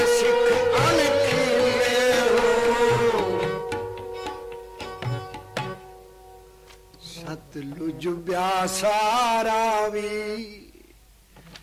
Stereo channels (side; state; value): both; identical; correlation 1.00